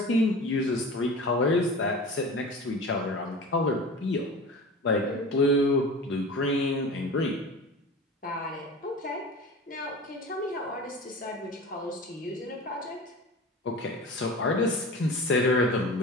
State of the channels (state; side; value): normal; both; correlation 0.35